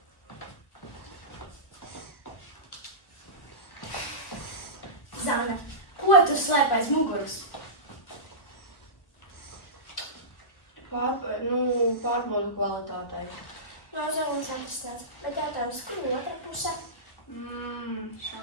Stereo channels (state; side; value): late; right; 1.2 ms